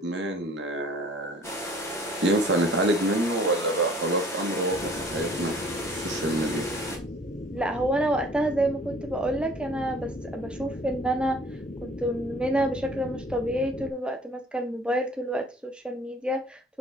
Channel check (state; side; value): normal; both; correlation 0.52